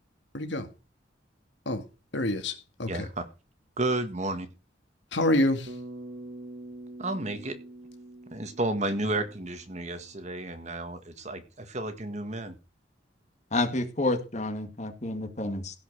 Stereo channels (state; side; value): normal; both; correlation 0.34